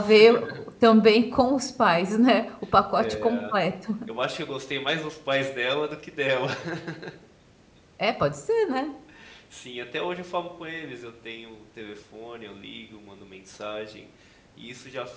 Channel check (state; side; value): identical; both; correlation 1.00